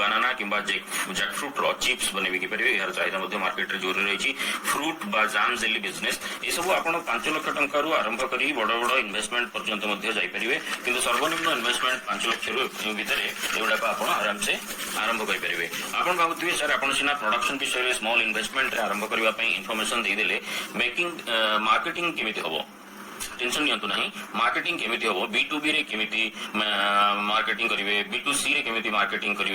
किंबा जैकफ्रूट रो चिप्स बनेबी कि परिबे यार चाहिदा मध्ये मार्केट रे जोर रही फ्रूट बा जाम जेली बिजनेस ए सब आपण 5 लाख टंका रु आरंभ करी बड़ बड़ इन्वेस्टमेंट पर्यंत मध्ये जाई परिबे किंतु सर्वनिम्न इन्वेस्टमेंट 5 लाख रु भितरे एउडा को आपण आराम से आरंभ करि परिबे आपण भाबुथिबे सर आपण सिना प्रोडक्शन विषय रे स्मॉल इन्वेस्टमेंट रे आरंभ करबा पई इंफॉर्मेशन दे देले मेकिंग मार्केटिंग केमिति हबो टेंशन नियंतु नहीं मार्केटिंग केमिति हबो B2B रे केमिति मार्केटिंग करिवे B2C रे केमिति मार्केटिंग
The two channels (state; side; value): identical; both; correlation 1.00